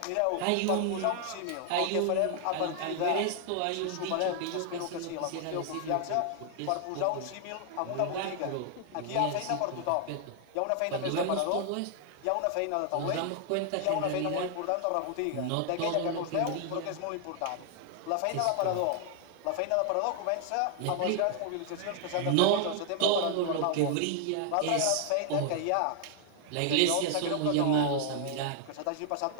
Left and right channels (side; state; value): both; different; correlation 0.00